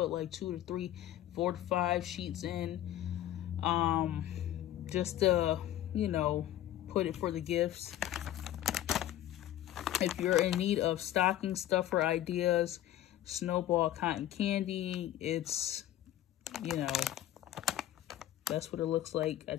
like 2 to 3, 4 to 5 sheets in, just to, you know, put it for the gifts. If you're in need of stocking stuffer ideas, Snowball cotton candy, it's, you know, that's what it looks like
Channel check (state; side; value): quieter; right; 12.7 dB